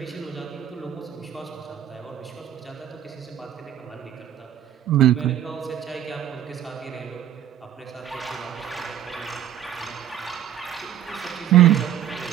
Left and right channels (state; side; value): quieter; left; 10.8 dB